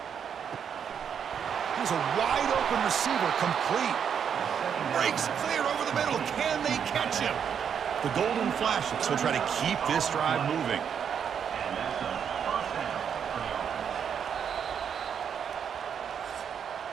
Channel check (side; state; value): left; quieter; 7.7 dB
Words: Here's a wide open receiver, complete. Breaks clear over the middle. Can they catch him? The Golden Flashes will try to keep this drive moving.